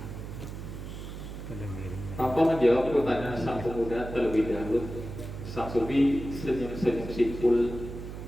tanpa menjawab pertanyaan sang pemuda terlebih dahulu, sang sufi senyum-senyum simpul.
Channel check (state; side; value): noise; right; hum, 9 dB below the sound